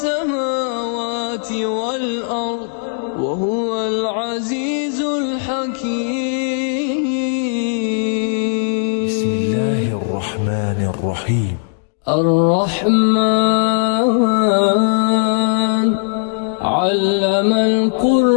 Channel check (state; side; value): silent; right; digital silence